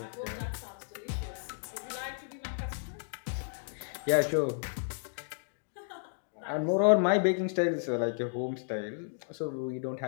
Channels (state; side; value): silent; right; digital silence